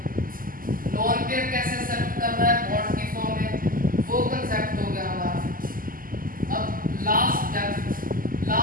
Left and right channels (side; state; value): left; late; 0.41 ms